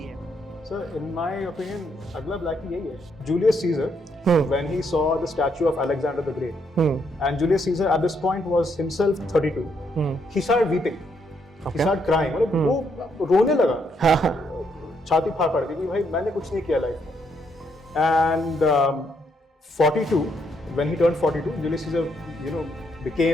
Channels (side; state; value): both; normal; correlation 0.75